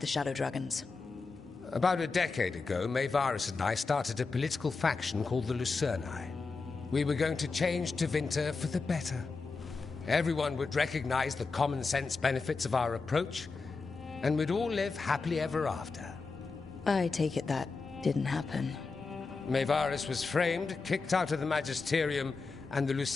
Shadow Dragons? About a decade ago, Maevaris and I started a political faction called the Lucerni. We were going to change Tevinter for the better. Everyone would recognize the common sense benefits of our approach, and we'd all live happily ever after. I take it that didn't happen. Maevaris was framed, kicked out of the Magisterium, and the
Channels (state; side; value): quieter; right; 4.3 dB